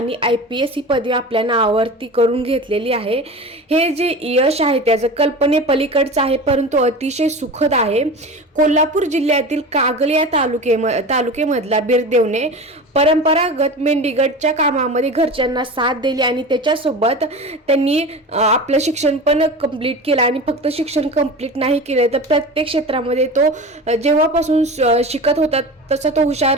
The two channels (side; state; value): both; normal; correlation 0.31